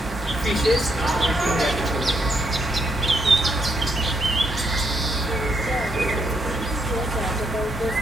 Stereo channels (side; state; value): both; normal; correlation 0.77